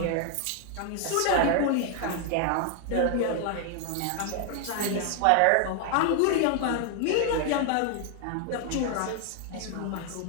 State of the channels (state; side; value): different; both; correlation 0.00